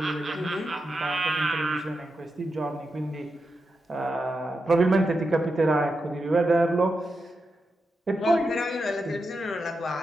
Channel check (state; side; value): normal; both; correlation 0.88